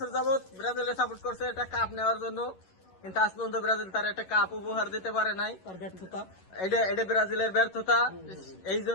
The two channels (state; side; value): late; right; 11 ms